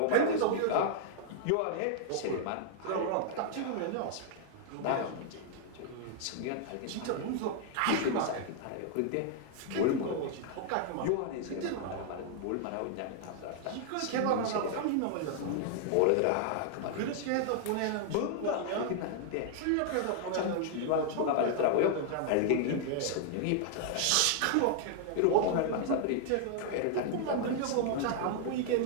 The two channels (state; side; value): different; both; correlation -0.01